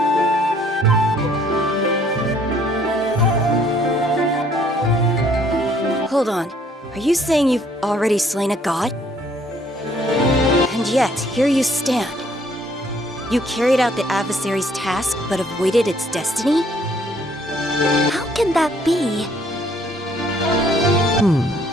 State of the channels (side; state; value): both; normal; correlation 0.63